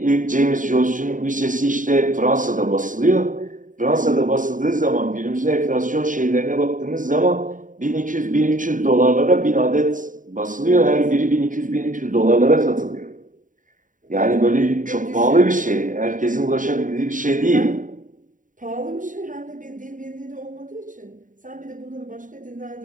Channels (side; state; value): left; late; 0.38 ms